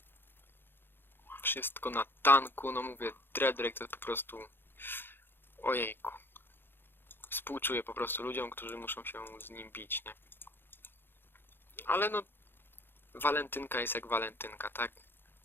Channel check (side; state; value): right; late; 0.10 ms